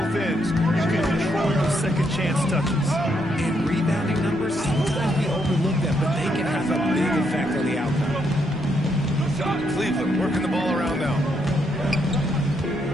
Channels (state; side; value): normal; both; correlation 0.77